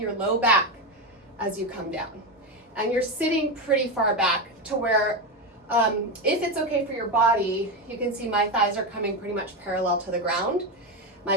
low back as you come down. And you're sitting pretty far back to where if it's okay for your body, you can see my thighs are coming pretty much parallel to the ground. My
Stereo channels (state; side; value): normal; both; correlation 0.13